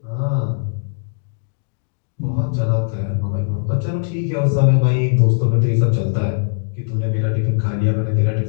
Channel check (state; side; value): silent; right; digital silence